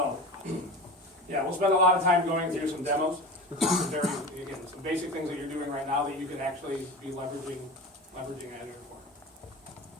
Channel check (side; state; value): both; normal; correlation 0.31